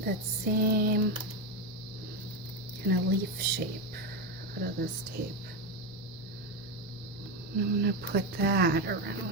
that same kind of leaf shape out of this tape. And I'm going to put that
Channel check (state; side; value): noise; left; hum, 24 dB below the sound